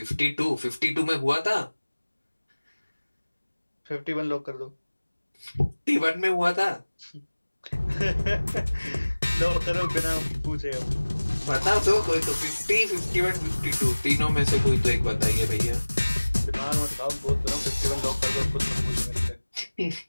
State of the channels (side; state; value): both; inverted; correlation -1.00